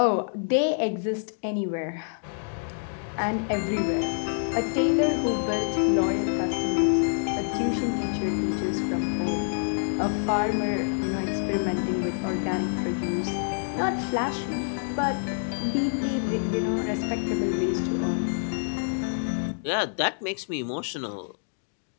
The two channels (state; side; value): silent; right; digital silence